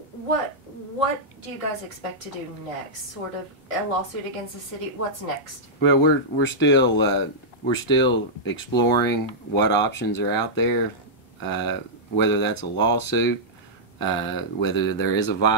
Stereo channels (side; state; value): both; normal; correlation -0.10